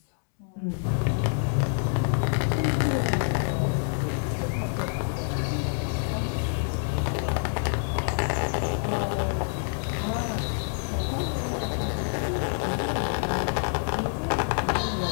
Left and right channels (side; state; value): right; silent; 60 dB below the other